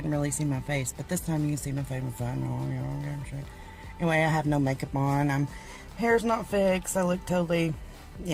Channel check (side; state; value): both; identical; correlation 1.00